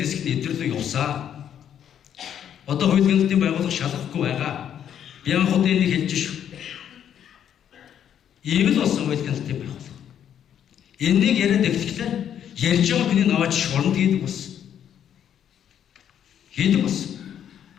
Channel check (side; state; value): right; quieter; 9.5 dB